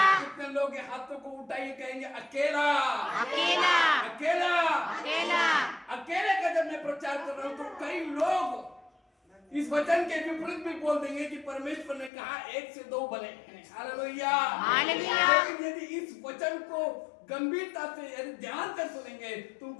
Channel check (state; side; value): drops out; right; at 12.1 s